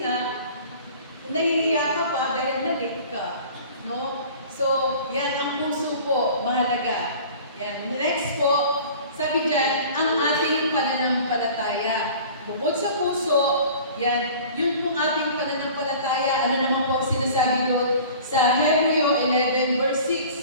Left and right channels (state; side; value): inverted; both; correlation -0.44